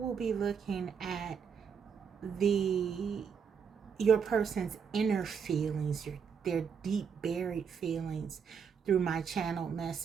be looking at your person's inner feelings, their deep buried feelings through my channel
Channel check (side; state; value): left; quieter; 6.7 dB